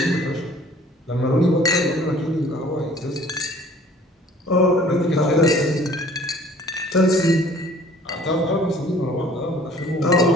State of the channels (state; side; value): normal; both; correlation 0.52